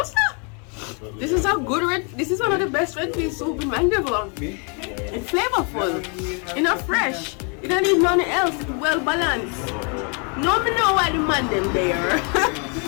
sir. This is a good red. This is one of the best red pea soup in Mandeville. It's flavorful. It's not fresh. You don't need nothing else. It's well balanced. No, me know why the man them there.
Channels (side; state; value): right; quieter; 37.0 dB